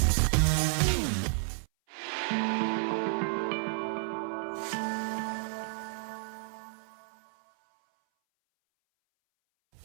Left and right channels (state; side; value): silent; left; 57 dB below the other